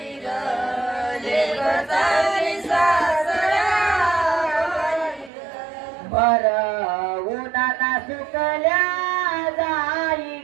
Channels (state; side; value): drops out; left; at 5.3 s